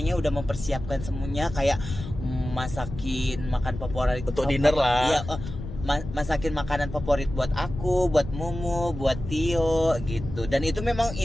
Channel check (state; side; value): noise; left; rumble, 9 dB below the sound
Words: udah mempersiapkan semuanya kayak masakin makan favorit Untuk dinner lah. Iya, masakin makanan favorit buat aku, buat Mumu, buat Tio gitu. Dan itu memang